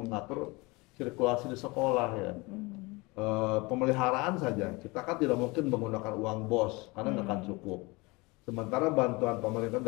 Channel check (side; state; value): right; quieter; 24.9 dB